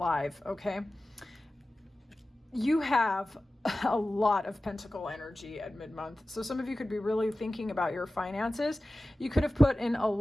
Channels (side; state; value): both; normal; correlation 0.96